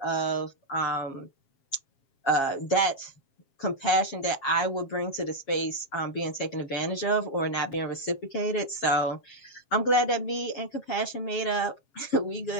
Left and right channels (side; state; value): right; late; 7.4 ms